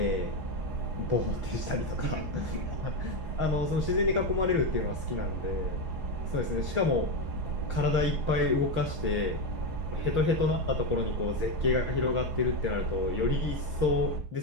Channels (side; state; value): left; late; 6.4 ms